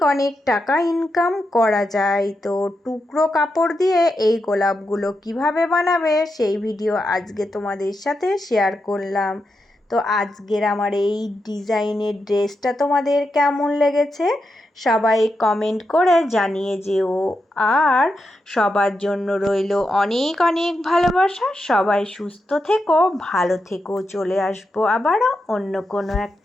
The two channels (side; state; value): both; normal; correlation 0.86